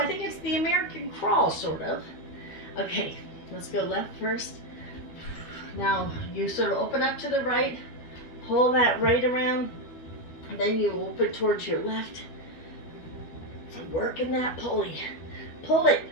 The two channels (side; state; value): right; late; 12 ms